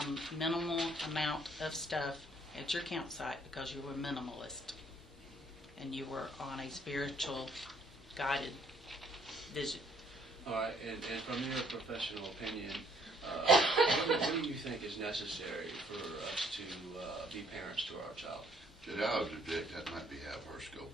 amount of stuff at your campsite because you were minimalist and you were on a spiritual guided vision. All right, and from your professional opinion, what do you think is necessary for us to be parents to our child? Judge, I would object that might be out of her scope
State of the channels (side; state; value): both; normal; correlation 0.65